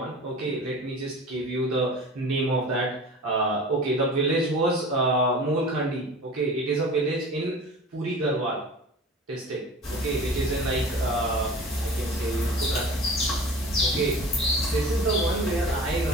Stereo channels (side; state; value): both; normal; correlation 0.39